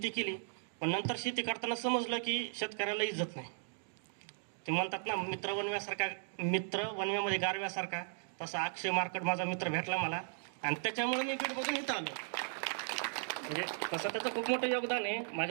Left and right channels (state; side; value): silent; left; digital silence